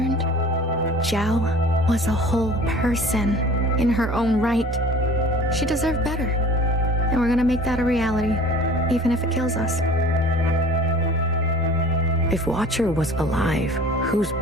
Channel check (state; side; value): normal; both; correlation 0.45